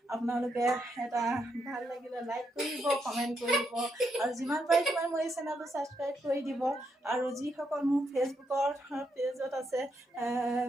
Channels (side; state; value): both; normal; correlation 0.79